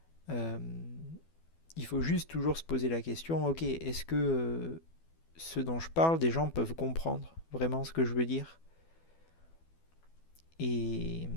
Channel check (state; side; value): late; right; 12 ms